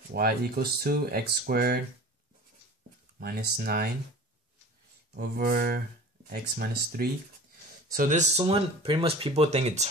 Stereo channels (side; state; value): both; normal; correlation 0.39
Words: Y equals to x squared minus 9 over x minus 3. So this one, pretty much people think it's